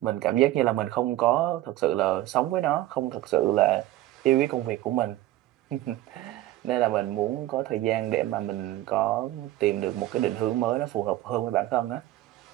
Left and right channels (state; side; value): quieter; left; 15.3 dB